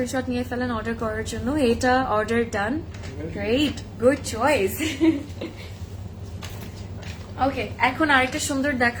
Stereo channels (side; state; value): both; identical; correlation 1.00